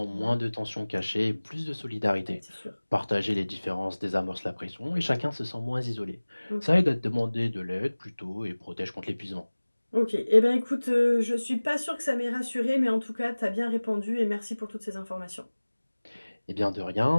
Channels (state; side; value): inverted; both; correlation -1.00